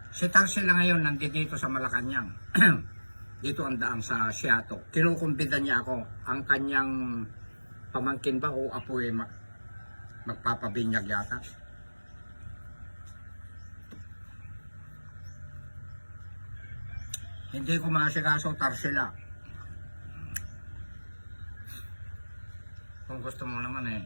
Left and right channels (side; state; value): both; inverted; correlation -1.00